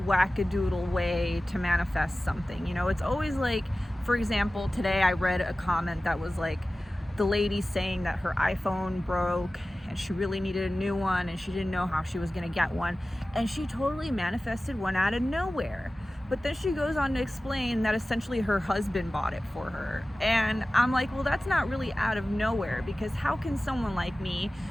wackadoodle way to manifest something. You know, it's always like, for example, today I read a comment that was like the lady saying that her iPhone broke and she really needed a new one and she didn't know how she was going to get one, and she totally manifested one out of nowhere. But then she goes on to explain that essentially her husband bought it for her. And I'm like, well, that's not really out of nowhere, because how can someone like me,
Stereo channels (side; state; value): both; normal; correlation 0.96